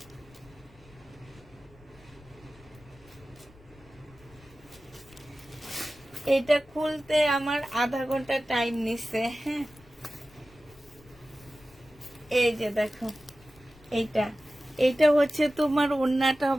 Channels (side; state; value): left; noise; rumble, 25 dB below the sound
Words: এটা খুলতে আমার আধা ঘন্টা টাইম নিচ্ছে। হ্যাঁ, এই যে দেখো এইটা, এইটা হচ্ছে তোমার ওড়নাটা